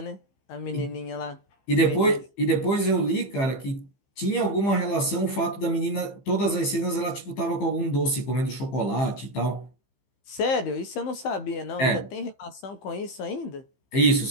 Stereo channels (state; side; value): late; right; 15 ms